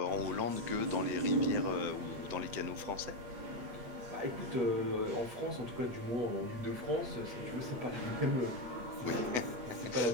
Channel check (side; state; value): left; late; 8.3 ms